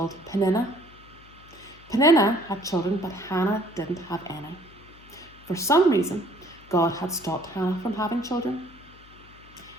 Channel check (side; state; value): left; noise; hum, 24 dB below the sound